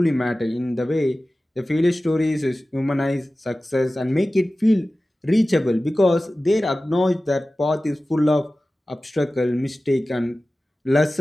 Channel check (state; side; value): normal; both; correlation 0.96